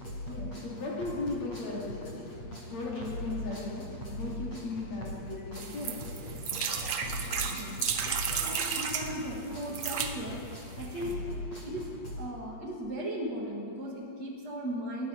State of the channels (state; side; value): late; right; 8.6 ms